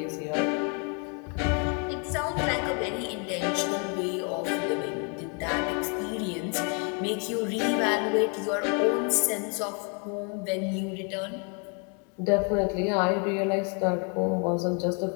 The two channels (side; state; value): right; quieter; 37.5 dB